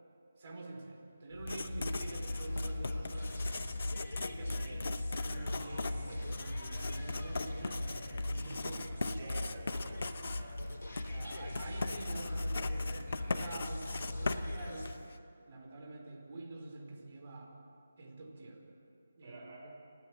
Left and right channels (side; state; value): both; inverted; correlation -0.94